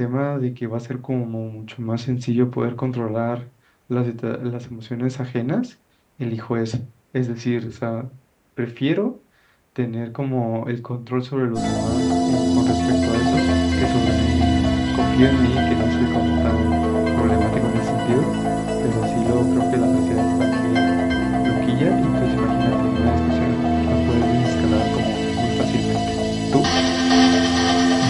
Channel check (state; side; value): identical; both; correlation 1.00